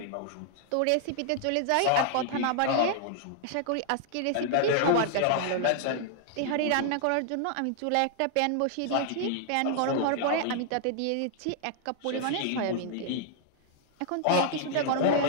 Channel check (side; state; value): both; different; correlation -0.01